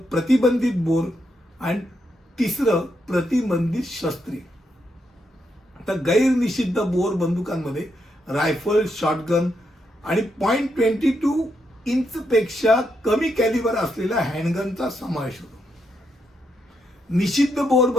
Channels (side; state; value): both; normal; correlation 0.80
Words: प्रतिबंधित बोर आणि तिसरं प्रतिबंधित शस्त्रे. तर गैरनिषिद्ध बोर बंदुकांमध्ये रायफल, शॉटगन आणि .22 इंचपेक्षा कमी कॅलिबर असलेल्या हँडगनचा समावेश होतो. निषिद्ध बोर